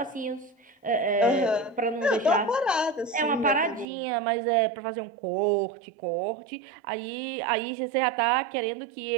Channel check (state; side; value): drops out; left; at 3.9 s